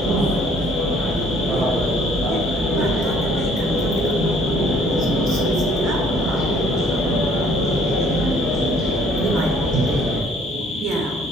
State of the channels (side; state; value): both; normal; correlation 0.60